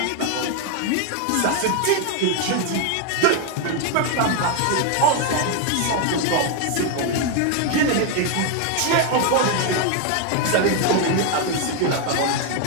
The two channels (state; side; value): different; both; correlation 0.01